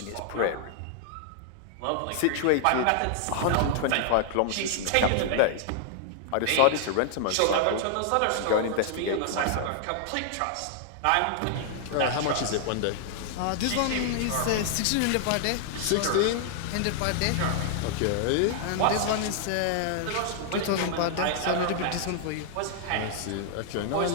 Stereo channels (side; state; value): both; different; correlation -0.01